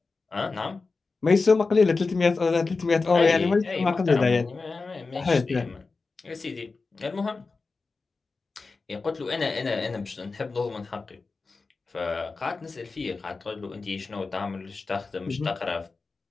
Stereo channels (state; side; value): quieter; right; 4.1 dB